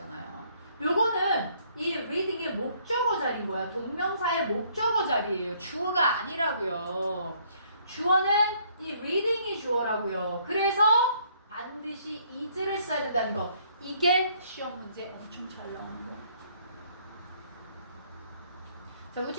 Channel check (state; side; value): inverted; both; correlation -0.65